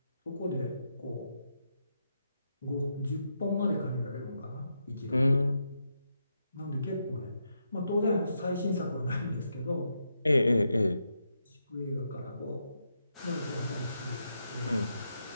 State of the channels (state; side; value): inverted; both; correlation -0.83